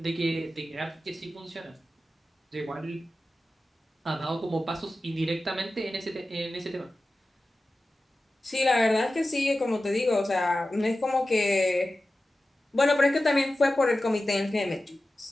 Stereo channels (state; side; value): normal; both; correlation 0.94